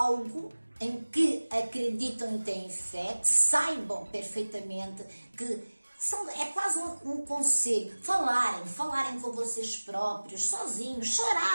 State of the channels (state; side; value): inverted; both; correlation -1.00